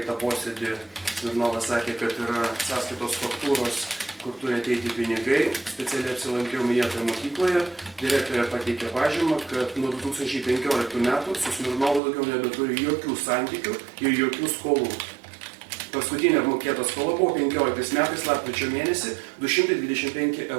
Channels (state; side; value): drops out; left; at 12.0 s